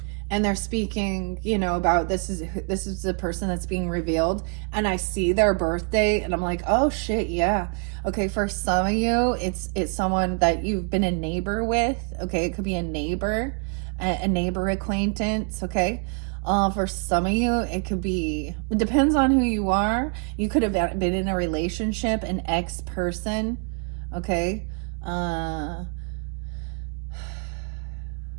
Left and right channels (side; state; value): left; quieter; 37.5 dB